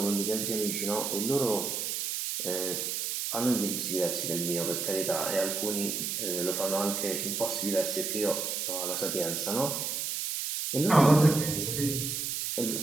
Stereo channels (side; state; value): right; noise; hiss, 2 dB below the sound